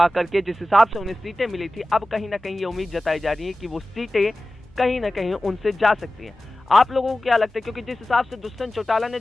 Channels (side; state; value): both; normal; correlation 0.96